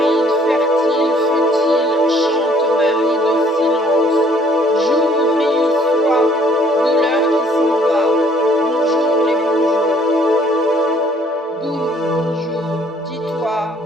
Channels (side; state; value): both; normal; correlation 0.60